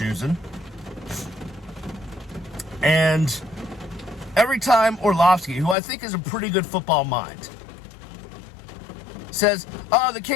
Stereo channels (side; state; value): right; drops out; at 5.8 s